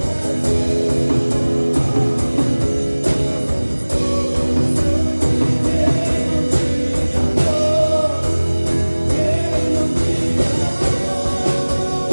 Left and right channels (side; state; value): both; inverted; correlation -1.00